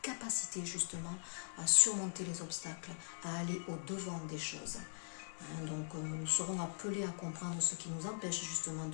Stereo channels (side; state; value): right; silent; digital silence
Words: capacité justement à surmonter les obstacles, à aller au-devant des choses. Donc, nous serons appelés à comprendre ce qui nous empêche justement